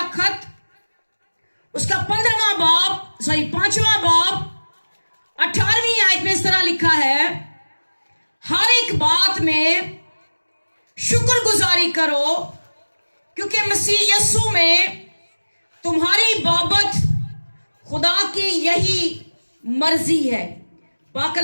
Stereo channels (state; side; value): inverted; both; correlation -1.00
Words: खत, उसका 5वां बाब 18वीं आयत में इस तरह लिखा है, हर एक बात में शुक्रगुजारी करो क्योंकि मसीह यीशु में तुम्हारी बाबत खुदा की यही मर्जी है। पाक